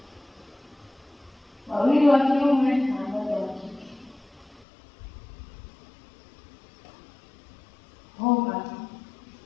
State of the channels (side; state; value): right; drops out; at 4.7 s